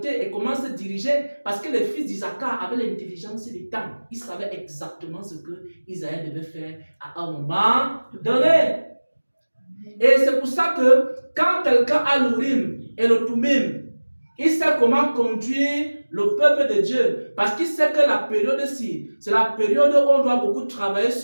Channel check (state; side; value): inverted; both; correlation -1.00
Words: et comment se diriger, parce que les fils d'Isaac avaient l'intelligence du temps. Ils savaient exactement ce que Isaïe devait faire à un moment donné. Et c'est pour ça que quand quelqu'un a l'Urim et le Tumim, il sait comment conduire le peuple de Dieu. Parce qu'il sait que la période-ci, c'est la période où on doit beaucoup travailler